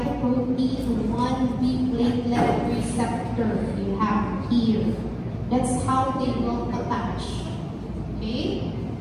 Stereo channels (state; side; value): identical; both; correlation 1.00